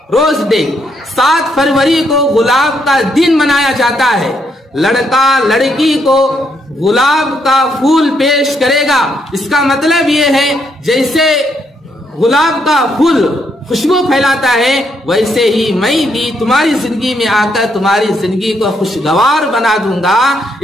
रोज डे। 7 फरवरी को गुलाब का दिन मनाया जाता है। लड़का लड़की को गुलाब का फूल पेश करेगा। इसका मतलब ये है जैसे गुलाब का फूल खुशबू फैलाता है, वैसे ही मैं भी तुम्हारी जिंदगी में आकर तुम्हारी जिंदगी को खुशगवार बना दूंगा।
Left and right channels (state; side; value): normal; both; correlation 0.75